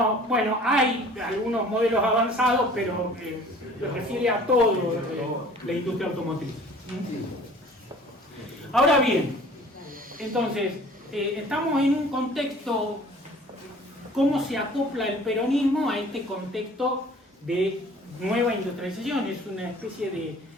bueno, hay algunos modelos avanzados, pero se refiere a todo la industria automotriz. Ahora bien, entonces, estamos en un contexto, ¿cómo se acopla el peronismo a este contexto de nueva industrialización? Es una especie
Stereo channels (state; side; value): normal; both; correlation 0.49